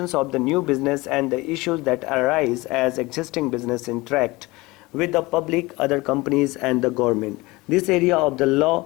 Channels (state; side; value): quieter; right; 22.1 dB